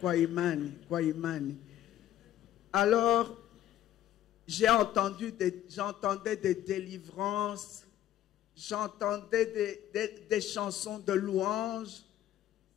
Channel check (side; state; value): right; quieter; 12.3 dB